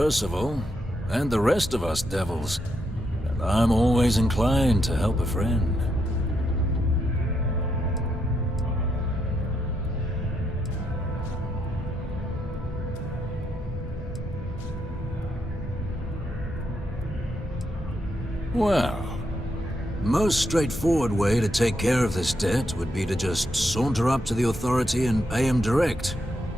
and the rest of us devils. And I'm always inclined to help a friend. Well, most straightforward way to take care of this debt would be to just saunter up to the Authority and pay him direct,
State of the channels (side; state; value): both; normal; correlation 0.80